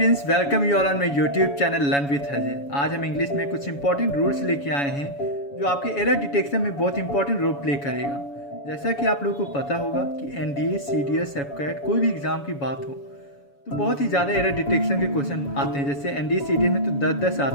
welcome you all on my YouTube channel learn with Ajay. आज हम English में कुछ इंपॉर्टेंट रूल्स लेके आए हैं जो आपके एरर डिटेक्शन में बहुत इंपॉर्टेंट रोल प्ले करेगा। जैसा कि आप लोगों को पता होगा कि एनडीए, सीडीएस, एफकैट कोई भी एग्जाम की बात हो तो बहुत ही ज़्यादा एरर डिटेक्शन के क्वेश्चन आते हैं। जैसे एनडीए सीडीएस में तो 10-10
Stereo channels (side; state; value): right; late; 7.1 ms